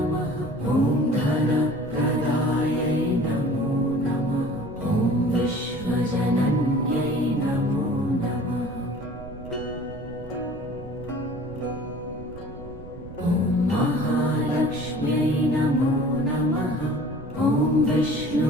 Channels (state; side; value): noise; right; rumble, 14 dB below the sound